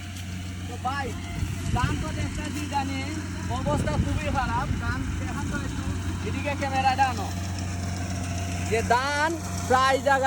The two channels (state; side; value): identical; both; correlation 1.00